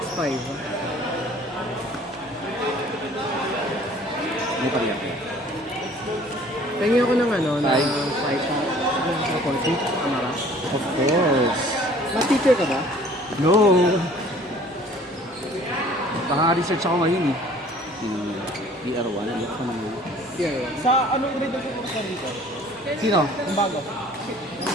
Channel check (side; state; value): both; normal; correlation 0.52